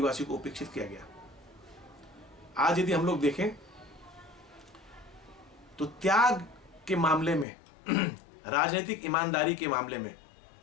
को उपेक्षित किया गया। आज यदि हम लोग देखें तो त्याग के मामले में, राजनीतिक ईमानदारी के मामले में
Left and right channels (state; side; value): drops out; right; at 7.5 s